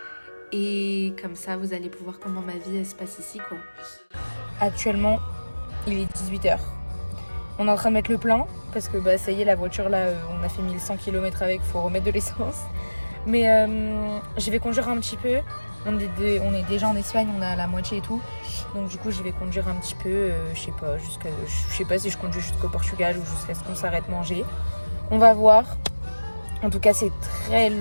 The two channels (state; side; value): inverted; both; correlation -1.00